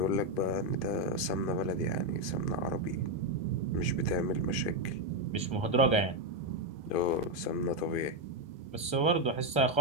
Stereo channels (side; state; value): right; late; 1.3 ms